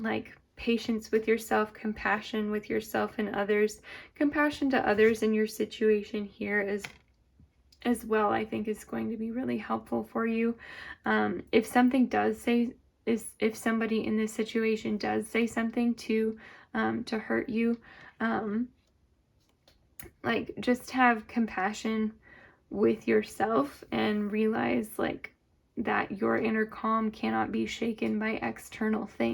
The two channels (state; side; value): identical; both; correlation 1.00